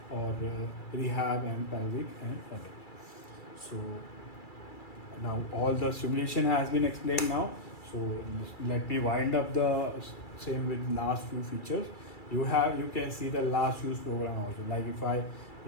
or rehab and pelvic and other. So now all the simulation has been explained now. So let me wind up the same with last few features. You can see the last use program also. Like if I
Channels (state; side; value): late; right; 2.3 ms